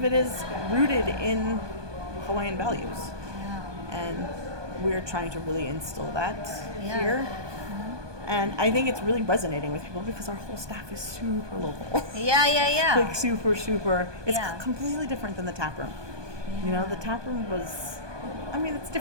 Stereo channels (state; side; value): late; left; 1.2 ms